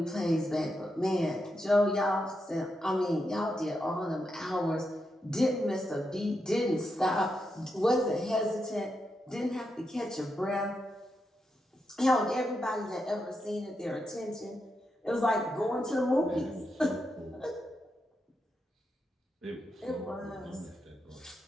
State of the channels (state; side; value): normal; both; correlation 0.85